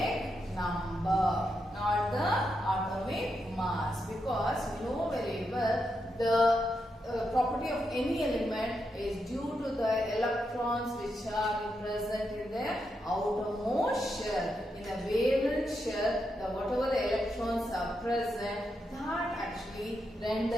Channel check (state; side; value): normal; both; correlation 0.84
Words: number, not the atomic mass, because we know very well the property of any element is due to the electrons which are present in the outermost shell. In the valence shell, whatever the electrons are present, that actually